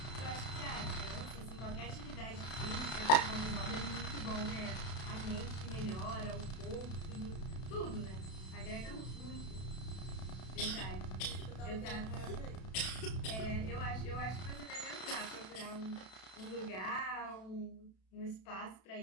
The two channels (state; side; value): late; right; 32 ms